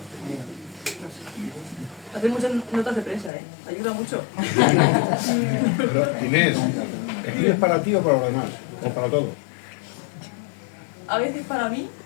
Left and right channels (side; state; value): right; drops out; at 3.3 s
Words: No sé. Hacer muchas notas de prensa, ayuda mucho. Pero, Inés, ¿escribes para ti o para los demás? ¿O para todos? A veces para mí,